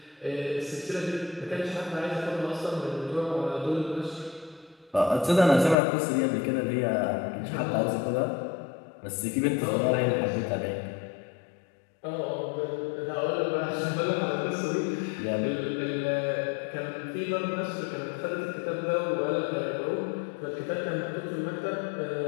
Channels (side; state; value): right; drops out; at 5.8 s